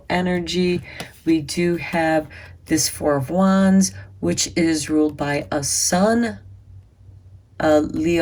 energy. We do have this Four of Wands, which is ruled by a sun, a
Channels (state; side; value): identical; both; correlation 1.00